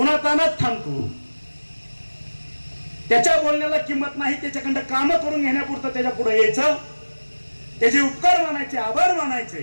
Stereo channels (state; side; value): inverted; both; correlation -1.00